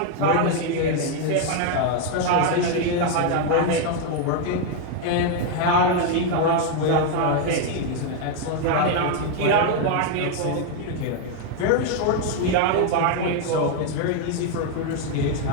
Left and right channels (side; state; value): both; different; correlation 0.01